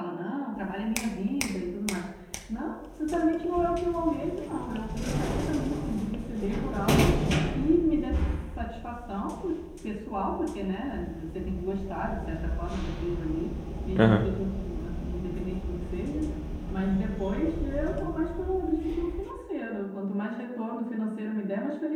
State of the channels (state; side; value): identical; both; correlation 1.00